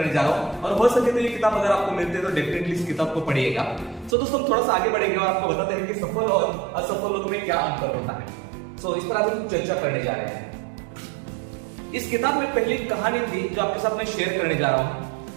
जा रहा हूँ, और हो सके तो ये किताब अगर आपको मिलती है तो डेफिनेटली इस किताब को पढ़िएगा। तो दोस्तों, हम थोड़ा सा आगे बढ़ेंगे और आपको बताते हैं कि सफल और असफल लोगों में क्या अंतर होता है। इस पर आज हम चर्चा करने जा रहे हैं। इस किताब में पहली कहानी थी जो आपके साथ में शेयर करने जा रहा हूं।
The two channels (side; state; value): left; drops out; at 4.2 s